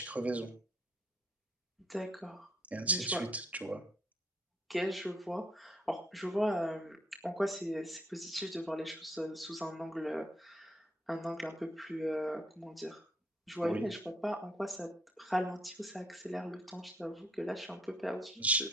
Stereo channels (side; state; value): both; normal; correlation 0.68